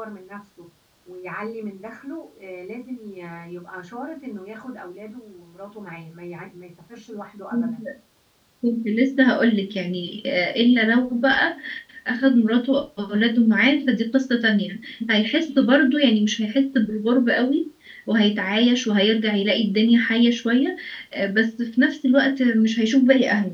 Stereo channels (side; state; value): both; identical; correlation 1.00